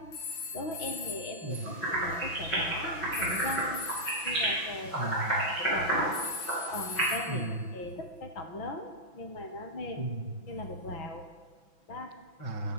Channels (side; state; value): right; late; 6.0 ms